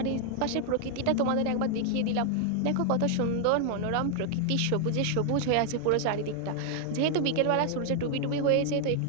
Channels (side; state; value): both; different; correlation 0.00